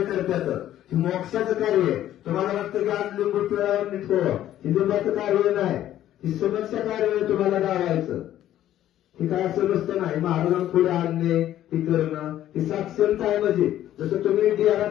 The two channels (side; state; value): right; quieter; 12.4 dB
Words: करतात. हे मोक्षाचं कार्य आहे. तुम्हाला वाटतं की आज लिंबू पिळावर निघतो. हे लिंबाचं कार्य नाही. ही समस्या कार्य आहे तुम्हाला गावायचं. हे काय असं नसतं नाही. महाराजांना पुढे आणणे हे करणं ही साक्षरता आहे म्हणजे जसं तुम्ही